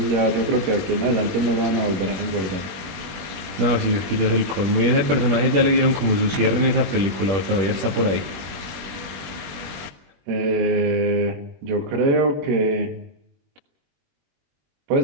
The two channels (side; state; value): left; late; 21 ms